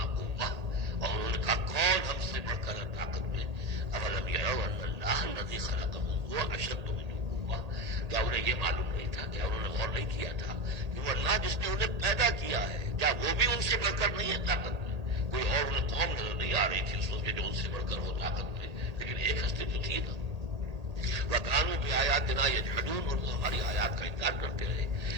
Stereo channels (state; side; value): late; left; 1.8 ms